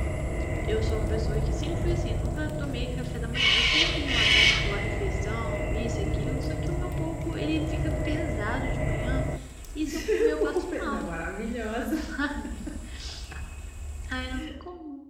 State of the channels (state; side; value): identical; both; correlation 1.00